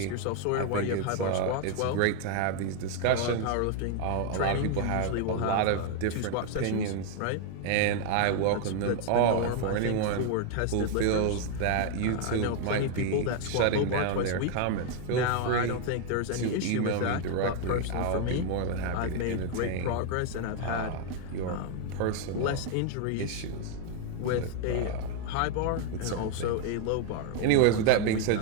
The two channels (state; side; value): different; both; correlation 0.00